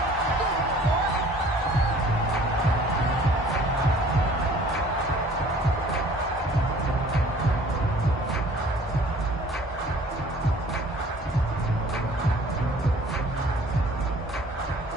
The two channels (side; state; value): both; normal; correlation 0.52